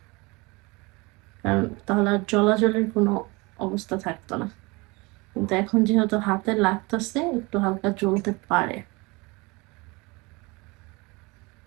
কারণ তাহলে আর জলাজলের কোনো অবস্থা থাকতো না। কিন্তু এখন যেহেতু হাতে লাগতেছে, একটু হালকা জ্বলতে পারে।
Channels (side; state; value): left; quieter; 25.7 dB